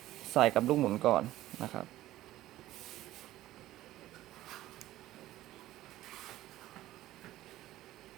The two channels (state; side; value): quieter; left; 15.1 dB